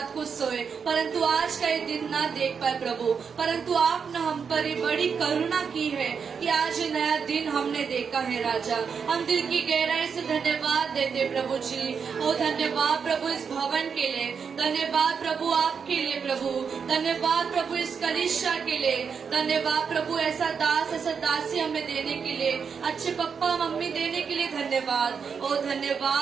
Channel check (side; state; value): left; quieter; 6.2 dB